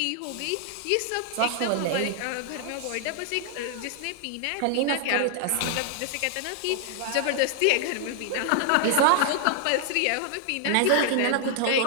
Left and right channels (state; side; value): different; both; correlation 0.00